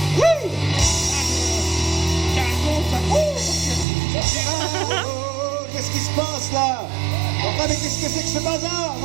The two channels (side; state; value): left; drops out; at 3.9 s